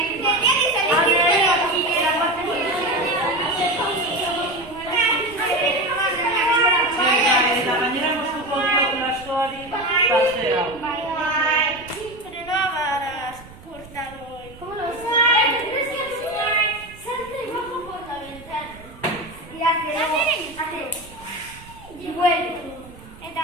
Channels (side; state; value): right; noise; rumble, 20 dB below the sound